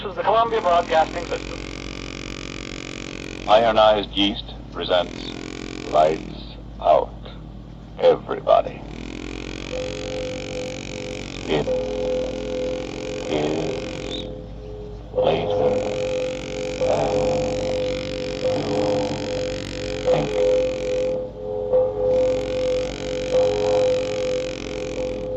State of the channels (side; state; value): both; identical; correlation 1.00